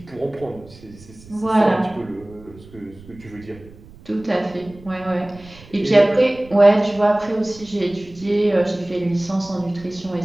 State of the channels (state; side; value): noise; right; rumble, 21 dB below the sound